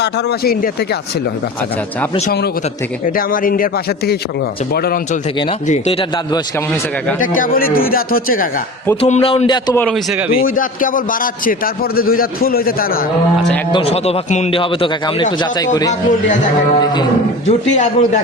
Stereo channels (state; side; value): normal; both; correlation 0.34